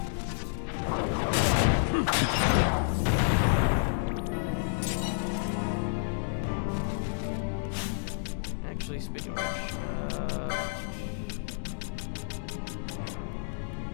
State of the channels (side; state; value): right; silent; digital silence